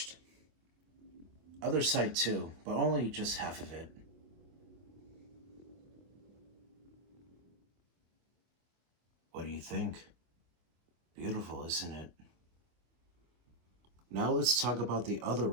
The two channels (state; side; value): late; left; 25 ms